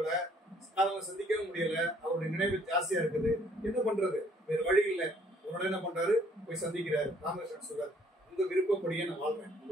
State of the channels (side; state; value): both; normal; correlation 0.62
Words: அவங்க சந்திக்கவும் முடியல. அவருடைய நினைவு ஜாஸ்தியா இருக்குது. என்ன பண்றது, வேற வழி இல்லை. உடனே என்ன பண்றாரு, போய் சந்திக்கிறாரு. ராமகிருஷ்ணன் சொல்றாரு, உங்க விருப்பப்படியே நான் வாழ்றேன்,